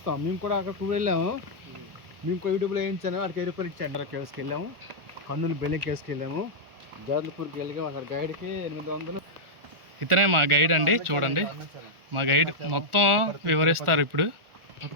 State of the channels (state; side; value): late; left; 1.4 ms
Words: మేము కూడా అక్కడికి వెళ్ళాము. మేము కూడా యూట్యూబ్లో వేయించాను. అక్కడికి 10 రూపాయలు ఇచ్చాను. అక్కడ కేసుకి వెళ్ళాము. కర్నూలు బెల్లి కేసుకి వెళ్ళాము. జాదల్పూర్కి వెళ్ళాము. అక్కడ గైడ్కి 800. ఇతనే మా గైడ్ అండి, చూడండి మా గైడ్ మొత్తం వివరిస్తారు. ఇప్పుడు